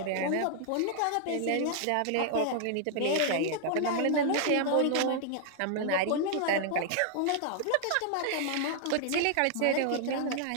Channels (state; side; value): different; both; correlation 0.00